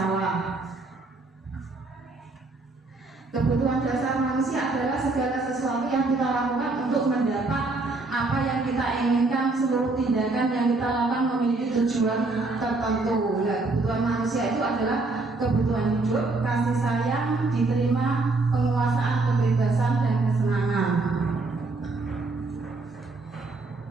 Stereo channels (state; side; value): quieter; left; 3.4 dB